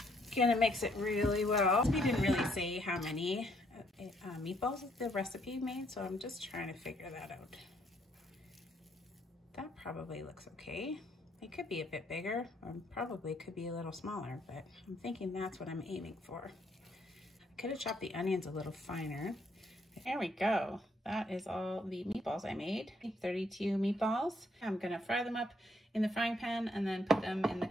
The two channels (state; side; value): normal; both; correlation 0.70